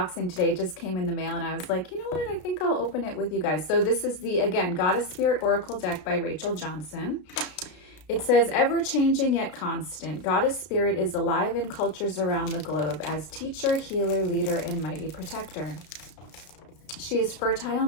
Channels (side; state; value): right; late; 33 ms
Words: today. It just came in the mail and I was like, you know what? I think I'll open it with you guys. So this is the, again, Goddess Spirit Oracle deck by Rachel Johnson. It says, ever-changing yet constant, Goddess Spirit is alive in cultures around the globe as teacher, healer, leader, and mighty protector. She is fertile